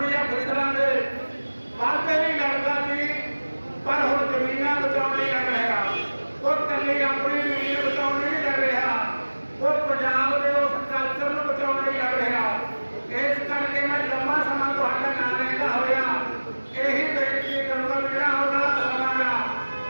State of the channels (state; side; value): inverted; both; correlation -1.00